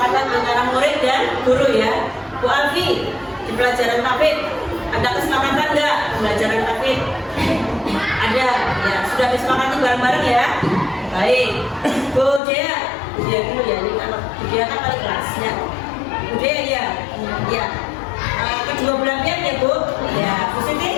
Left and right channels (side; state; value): right; drops out; at 12.4 s